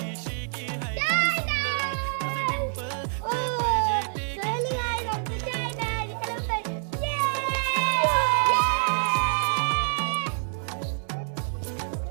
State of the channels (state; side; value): silent; left; 60 dB below the other